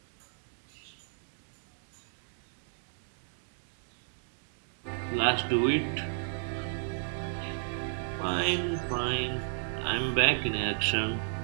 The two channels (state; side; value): silent; left; digital silence